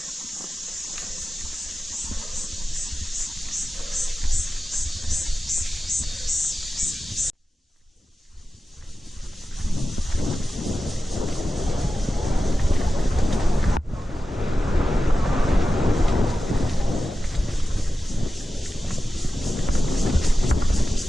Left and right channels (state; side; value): normal; both; correlation 0.93